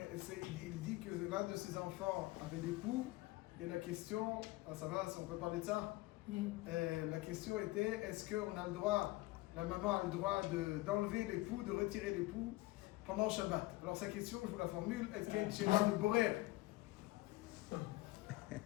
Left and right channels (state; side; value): quieter; right; 19.7 dB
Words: il dit que l'un de ses enfants avait des poux, et la question, ça va, on peut parler de ça? La question était, est-ce qu'on a le droit, la maman a le droit d'enlever les poux, de retirer les poux pendant Shabbat? Alors sa question, je vous la formule, est-ce qu'il y a une chéla de Borer?